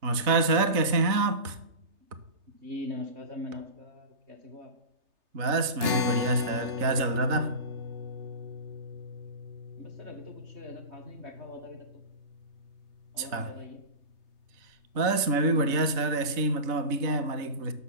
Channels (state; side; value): late; left; 3.3 ms